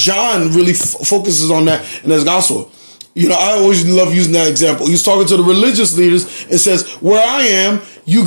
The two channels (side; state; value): both; inverted; correlation -1.00